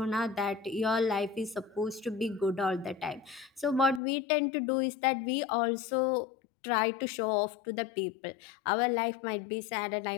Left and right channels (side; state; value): right; drops out; at 4.0 s